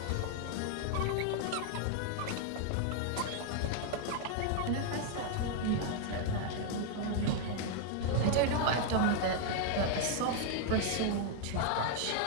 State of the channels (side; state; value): both; different; correlation 0.00